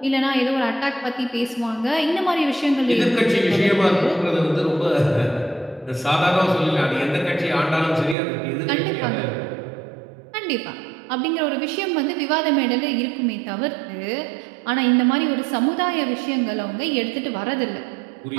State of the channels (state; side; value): drops out; left; at 8.2 s